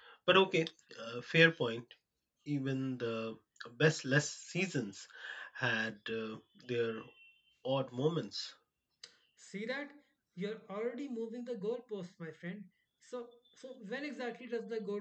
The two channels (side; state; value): both; identical; correlation 1.00